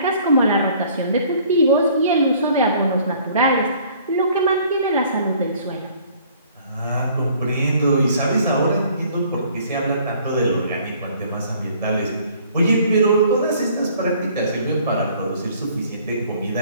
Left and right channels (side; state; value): both; inverted; correlation -0.56